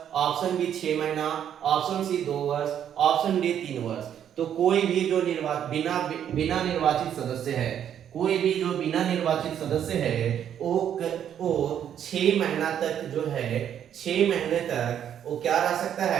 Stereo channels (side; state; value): left; quieter; 9.5 dB